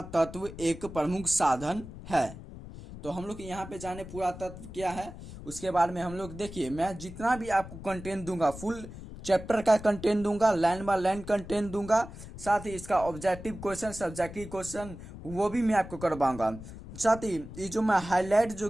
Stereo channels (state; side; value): noise; left; rumble, 13 dB below the sound